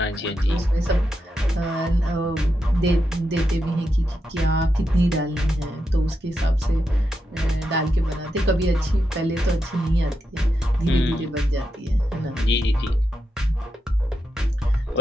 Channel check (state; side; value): normal; both; correlation 0.85